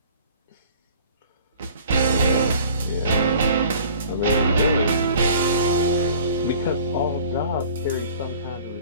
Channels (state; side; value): inverted; both; correlation -0.49